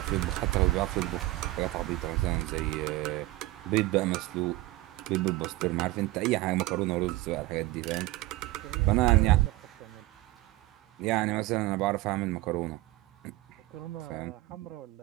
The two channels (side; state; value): left; quieter; 18.4 dB